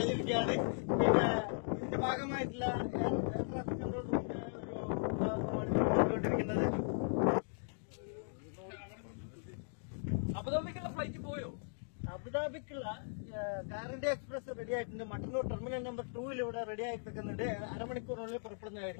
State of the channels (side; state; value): right; silent; digital silence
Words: പിന്നെ ഇതിന്റെ ഭാഗമായിട്ടുള്ള എയർ ട്രാഫിക് കൺട്രോൾ റൂമിന്റെ ഒരു കൊണ്ടുകൊണ്ടിരിക്കുന്നത്. അബുദാബിക്കുള്ള ഫ്ലൈറ്റ് പോയോ? അബുദാബിക്കുള്ള കാറിന്റെ എക്സ്പ്രസ് റെഡി ആയിട്ടുണ്ട്. മട്ടന്നൂർ ടെർമിനൽ നമ്പർ 2 ഇവിടെ റെഡി ആയി നിൽക്കുന്നുണ്ട്. അരമണിക്കൂറിനുള്ളിൽ പുറപ്പെടുന്നതായിരിക്കും.